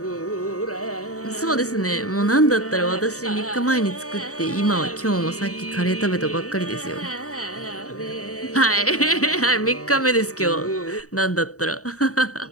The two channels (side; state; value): right; late; 0.66 ms